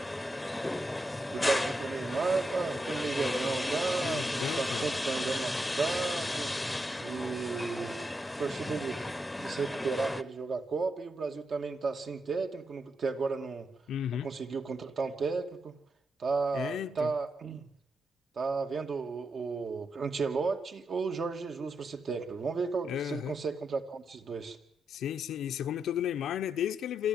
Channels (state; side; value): normal; both; correlation 0.83